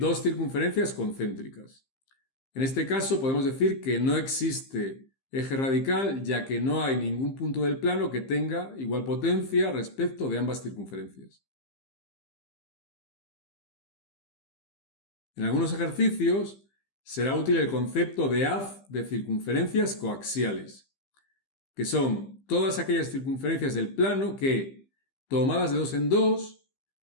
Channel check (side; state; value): right; late; 15 ms